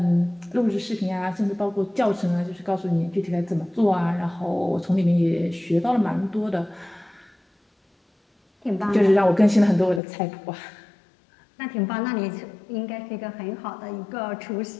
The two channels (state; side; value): drops out; right; at 10.0 s